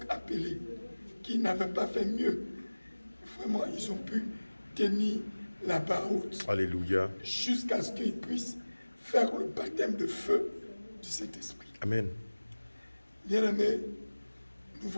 appelés qui n'avaient pas fait mieux, vraiment ils ont pu tenir la barre haute. Alléluia. Jusqu'à ce qu'ils puissent faire le baptême de feu du Saint-Esprit. Amen. Bien-aimés, nous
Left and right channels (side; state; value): both; inverted; correlation -1.00